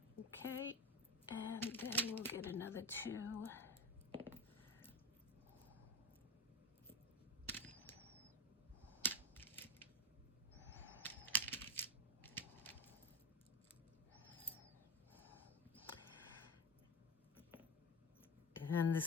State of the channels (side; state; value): both; normal; correlation 0.21